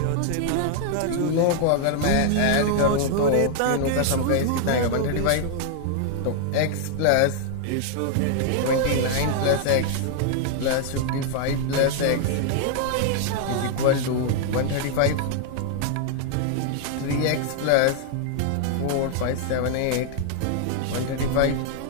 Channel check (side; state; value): both; different; correlation 0.00